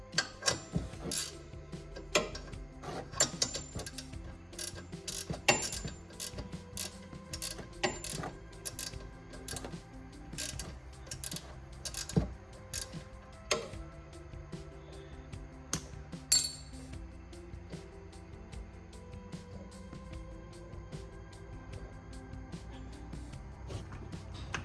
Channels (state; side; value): identical; both; correlation 1.00